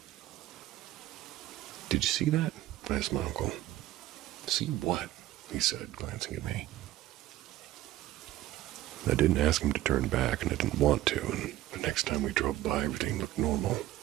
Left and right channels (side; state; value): left; quieter; 15.0 dB